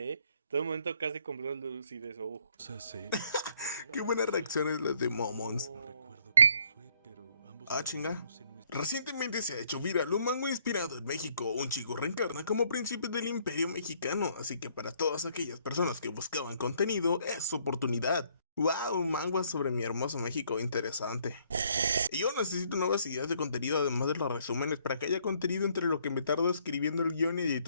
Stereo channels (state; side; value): inverted; both; correlation -0.66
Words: ¿eh? Todo el momento casi cumplió lucidez. Qué buenas reacciones las de Momons. Ah, chinga. Recientemente se ha hecho viral un manga inspirado en México. Un chico reencarna como príncipe del Imperio Mexicano, así que para todas aquellas personas que buscaban contenido, es su oportunidad. ¡Wow! Un manga sobre mi hermoso México, interesante. Y yo necesito nuevas ideas de contenido además de los resúmenes para que haya contenido entre lo que me tardo escribiendo el guión y